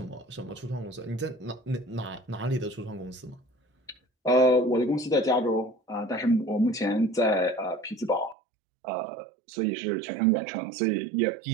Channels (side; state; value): left; drops out; at 8.3 s